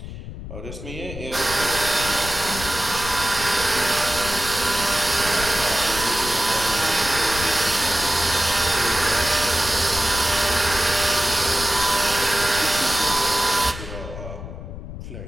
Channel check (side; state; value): left; noise; rumble, 11 dB below the sound